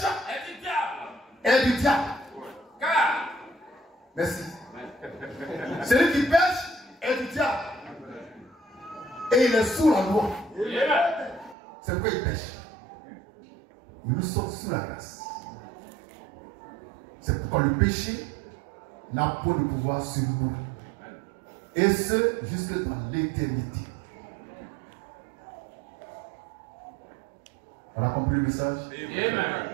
est du diable. Car. Merci. Celui qui pêche est du diable. Et il est sous la loi. C'est pourquoi il pêche. Nous sommes sous la grâce. C'est pourquoi le péché n'a pas de pouvoir sur nous. Et ce, jusque dans l'éternité. On a compris le message? Amen.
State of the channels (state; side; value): drops out; left; at 11.6 s